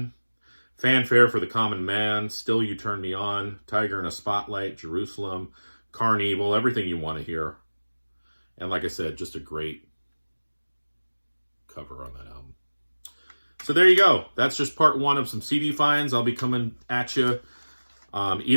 Fanfare for the Common Man, Still You Turn Me On, Tiger in a Spotlight, Jerusalem, Carnival, everything you want to hear. And like I said, just a great cover on that album. So there you go. That's just part one of some CD finds. I'll be coming at you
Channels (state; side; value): inverted; both; correlation -1.00